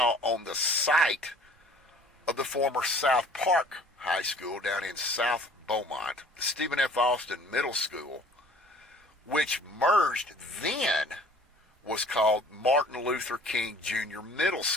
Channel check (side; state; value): both; normal; correlation 0.52